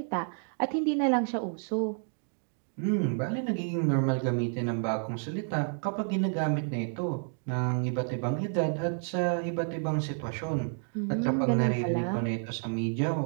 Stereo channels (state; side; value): silent; left; 57 dB below the other